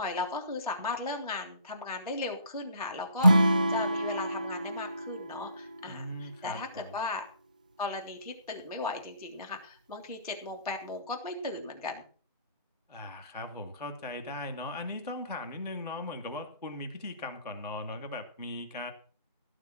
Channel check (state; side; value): inverted; both; correlation -0.60